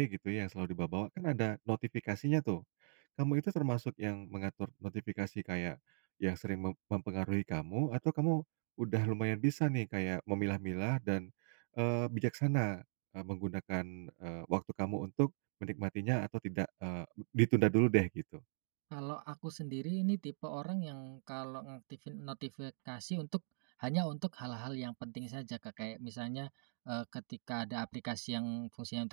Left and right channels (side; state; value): left; silent; digital silence